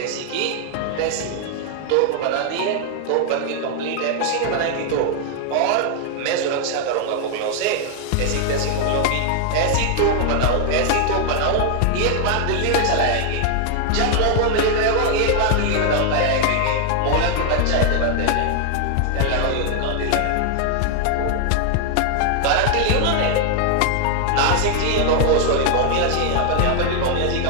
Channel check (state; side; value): different; both; correlation 0.00